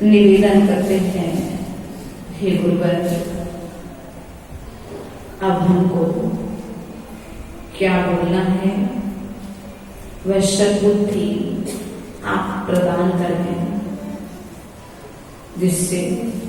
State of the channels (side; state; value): both; identical; correlation 1.00